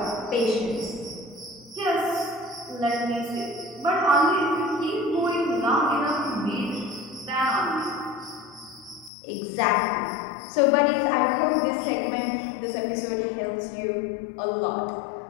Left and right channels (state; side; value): drops out; right; at 9.1 s